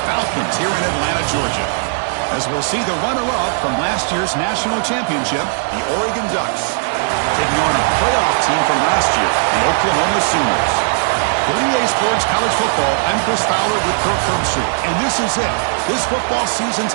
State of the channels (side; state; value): left; silent; digital silence